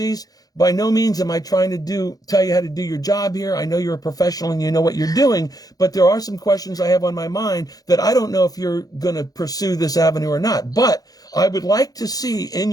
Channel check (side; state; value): right; late; 0.18 ms